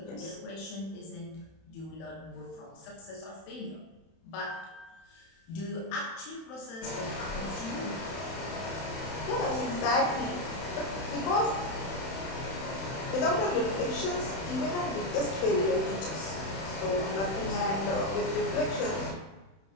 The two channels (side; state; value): right; late; 31 ms